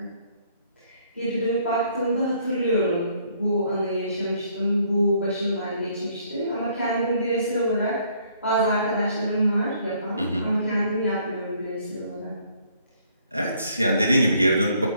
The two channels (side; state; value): both; inverted; correlation -0.64